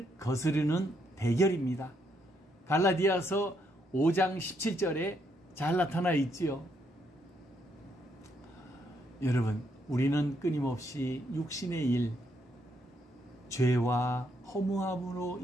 거스르는 대결입니다. 갈라디아서 5장 17절에 잘 나타나 있지요. 여러분, 우리는 끊임없이 육신의 일, 죄와 허무함으로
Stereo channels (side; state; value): both; normal; correlation 0.75